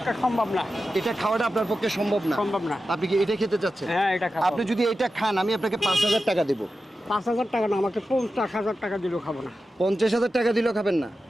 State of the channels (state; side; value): normal; both; correlation 0.92